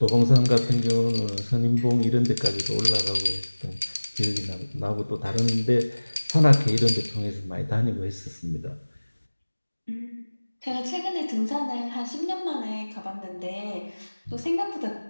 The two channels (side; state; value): both; inverted; correlation -1.00